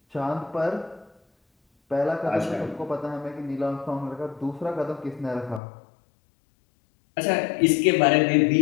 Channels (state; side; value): drops out; right; at 5.6 s